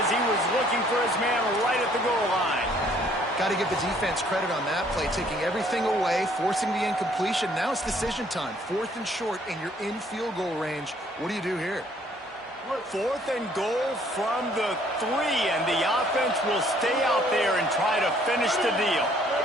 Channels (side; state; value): both; normal; correlation 0.62